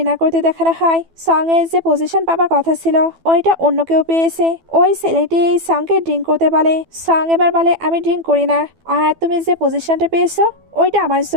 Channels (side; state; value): left; late; 12 ms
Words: করতে দেখানো হয়। সং এর যে পজিশন পাবার কথা ছিল ওইটা অন্য কেউ পেয়েছে। ওই ছেলেটি সংকে ড্রিঙ্ক করতে বলে। সং এবার বলে আমি ড্রিঙ্ক করি না, আর তুমি যে পজিশনটা পেয়েছো ওইটা আমার